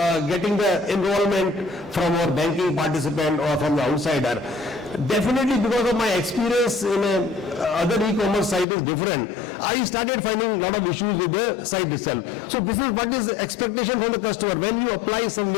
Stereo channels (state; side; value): drops out; right; at 8.7 s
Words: getting the enrollment from our banking participant or from the outsider? Definitely because of my experience in other e-commerce site is different. I started finding a lot of issues with the site itself. So this is what is expectation from the customer. When you apply